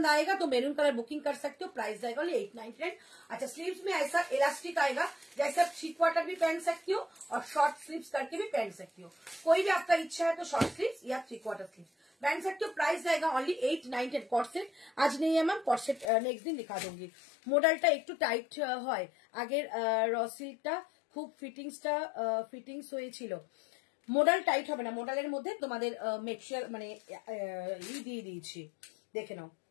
आएगा तो मेरून कलर बुकिंग कर सकते हो। प्राइस जाएगा ओनली 899। अच्छा स्लीव्स में ऐसा इलास्टिक आएगा, जैसे आप 3 क्वार्टर भी पहन सकती हो और शॉर्ट स्लीव्स करके भी पहन सकती हो। कोई भी आपका इच्छा है तो शॉर्ट स्लीव्स या 3 क्वार्टर स्लीव्स पहन सकते हो। प्राइस जाएगा ओनली 899। कॉर्सेट आज नहीं है मैम, कॉर्सेट नेक्स्ट दिन दिखा दूंगी। मॉडलটা একটু টাইট হয়, আগের র সিল্কটা খুব ফিটিংস হয়েছিল। মডেল টাইট হবে না, মডেলের মধ্যে তোমাদের মেক্সচার মানে দিয়ে দিয়েছি, দেখে নাও।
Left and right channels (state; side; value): drops out; right; at 16.1 s